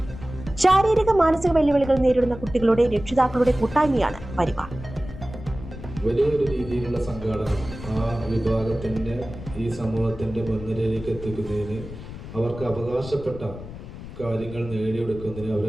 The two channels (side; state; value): left; noise; rumble, 12 dB below the sound